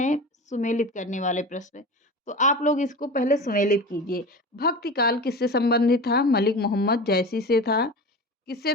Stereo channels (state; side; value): normal; both; correlation 0.31